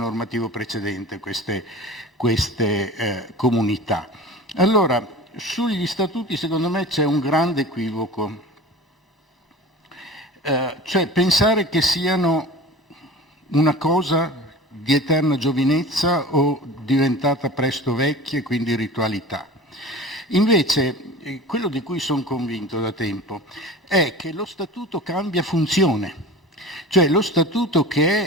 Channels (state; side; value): normal; both; correlation 0.37